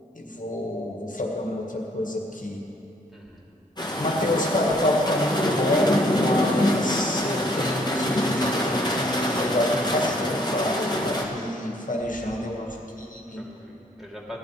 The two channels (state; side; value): normal; both; correlation 0.64